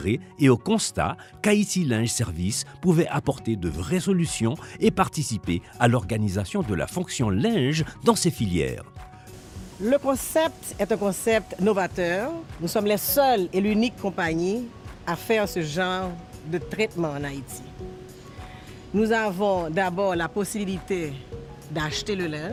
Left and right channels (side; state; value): both; identical; correlation 1.00